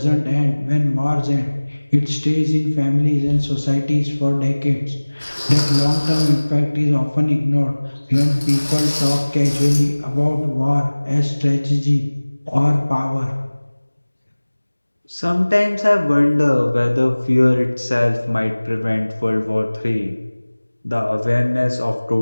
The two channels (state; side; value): inverted; both; correlation -1.00